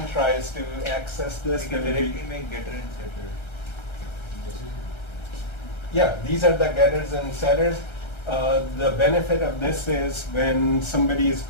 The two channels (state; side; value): late; right; 1.3 ms